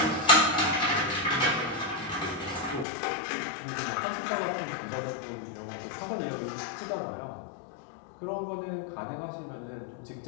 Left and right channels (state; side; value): drops out; right; at 2.9 s